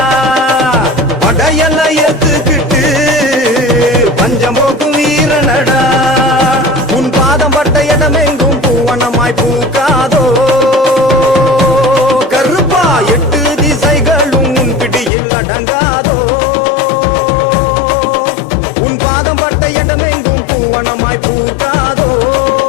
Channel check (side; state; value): right; drops out; at 15.1 s